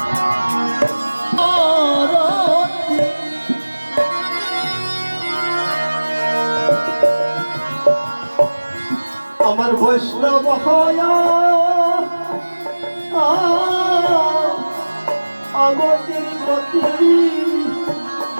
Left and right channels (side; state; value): both; inverted; correlation -1.00